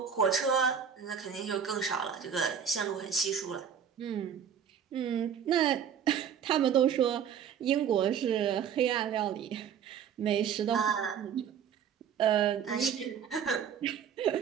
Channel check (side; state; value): left; quieter; 8.0 dB